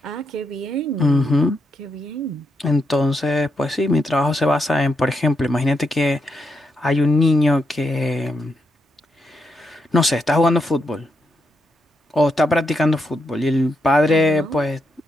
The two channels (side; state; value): both; normal; correlation 0.82